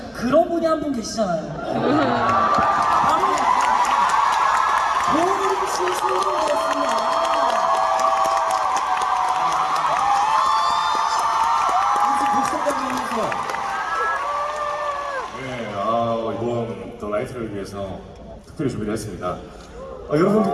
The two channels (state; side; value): identical; both; correlation 1.00